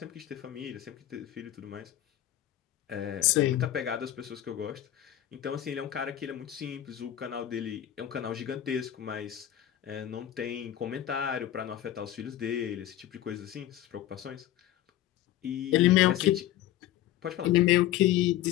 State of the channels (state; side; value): quieter; right; 12.7 dB